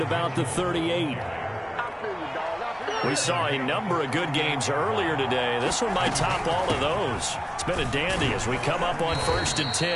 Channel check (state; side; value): identical; both; correlation 1.00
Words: about the 38. We saw a number of good games earlier today. This one might top all of those. It's been a dandy as we come up on first and